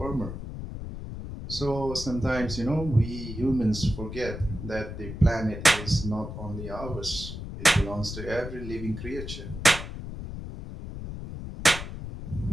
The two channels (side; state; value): left; noise; rumble, 8 dB below the sound